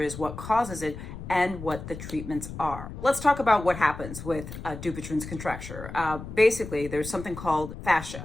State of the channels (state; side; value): noise; left; rumble, 11 dB below the sound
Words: what causes it, and what the treatments are. Let's talk about what happens with DUPUTRYEN'S contracture. Basically, there's something called